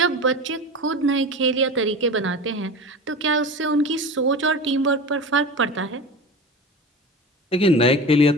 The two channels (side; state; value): both; normal; correlation 0.31